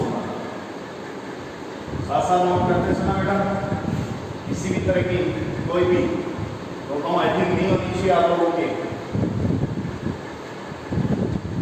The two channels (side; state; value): both; identical; correlation 1.00